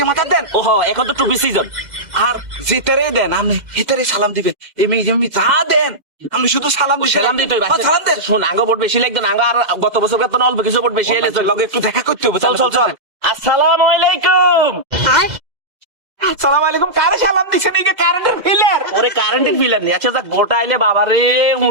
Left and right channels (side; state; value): left; late; 2.0 ms